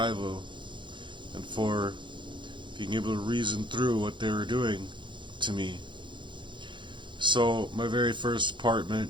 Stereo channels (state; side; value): late; left; 0.23 ms